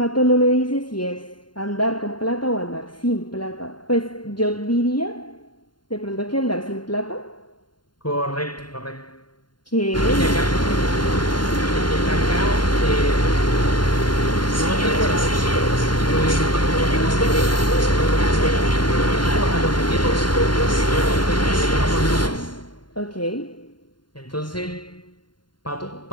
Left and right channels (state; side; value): late; right; 0.71 ms